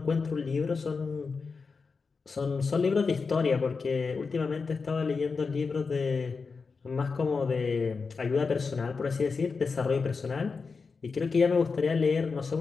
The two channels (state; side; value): quieter; right; 4.8 dB